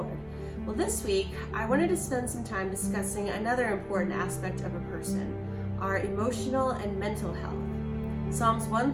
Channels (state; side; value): identical; both; correlation 1.00